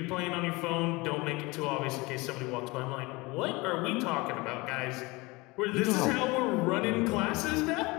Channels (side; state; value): right; quieter; 23.8 dB